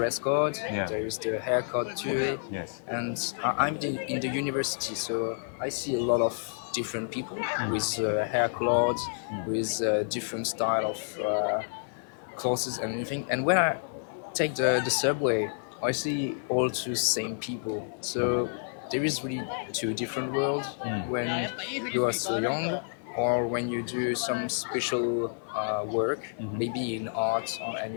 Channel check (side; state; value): right; silent; 58 dB below the other